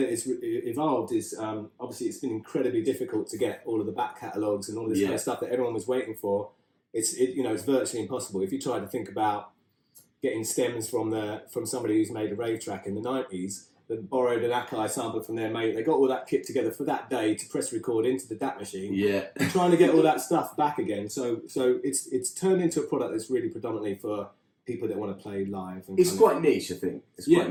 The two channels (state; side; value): identical; both; correlation 1.00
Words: it's evolved is, obviously it's been incredibly difficult to get all of the back catalogues and all this kind of stuff that everyone was waiting for. It's virtually impossible. If you try to think about getting stems from somebody who's made a rave track in the 90s, that borrowed an Akai sample from their mate, they got all that kit together for that day to press record into the DAT machine. Yeah. And trying to get all that stuff back again. So it's turned into a product that's really predominantly for people that want to play live. And it's quite niche, I think. It's quite